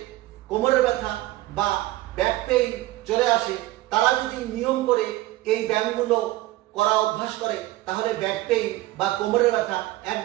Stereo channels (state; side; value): quieter; left; 17.2 dB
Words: কোমরের ব্যথা বা ব্যাক পেইন চলে আসে তারা যদি নিয়ম করে এই ব্যায়ামগুলো করা অভ্যাস করে তাহলে ব্যাক পেইন বা কোমরের ব্যথা